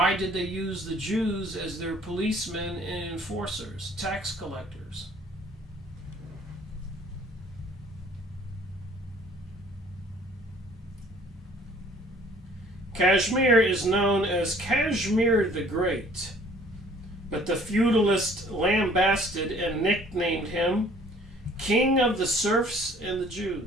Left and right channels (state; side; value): normal; both; correlation 0.55